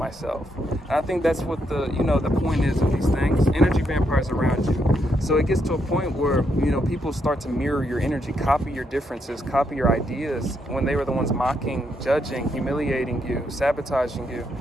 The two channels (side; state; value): both; normal; correlation 0.78